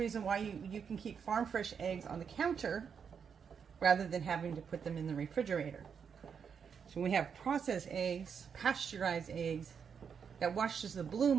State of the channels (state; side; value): quieter; left; 6.8 dB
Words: why you can keep farm fresh eggs on the counter rather than having to put them in the refrigerator. So when we have processed eggs, pasteurized eggs, that washes the